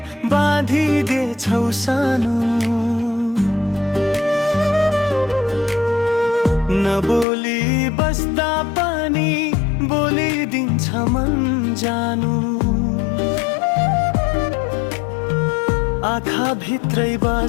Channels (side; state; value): right; drops out; at 7.2 s